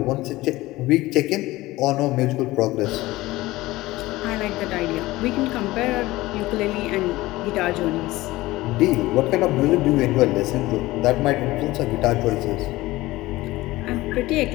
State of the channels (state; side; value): quieter; right; 18.6 dB